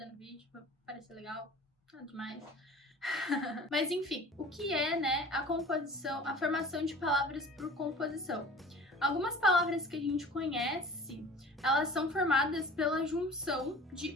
no vídeo, pra parecer legal, nada demais. Mas enfim, o que é, a composição, a formação de palavras por composição? Algumas palavras que a gente conhece, elas são formadas pela junção de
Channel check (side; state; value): both; normal; correlation 0.43